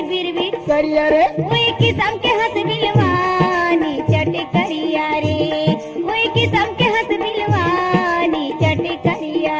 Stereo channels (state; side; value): identical; both; correlation 1.00